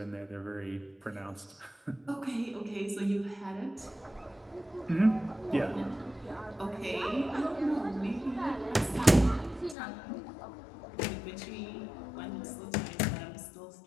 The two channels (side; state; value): right; drops out; at 9.8 s